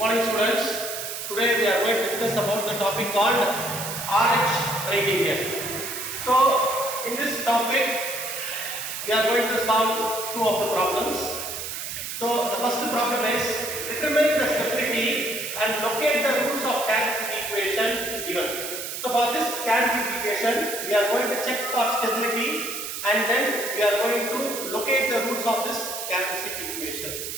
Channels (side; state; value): right; noise; hiss, 6 dB below the sound